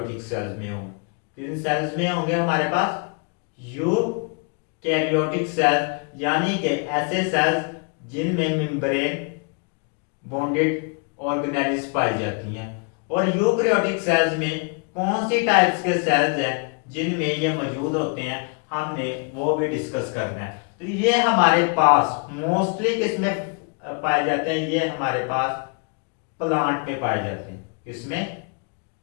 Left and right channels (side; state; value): right; quieter; 36.9 dB